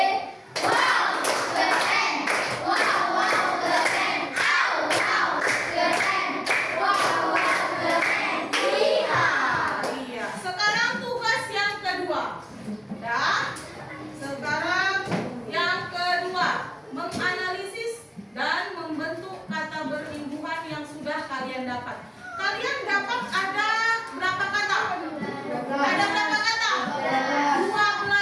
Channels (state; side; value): identical; both; correlation 1.00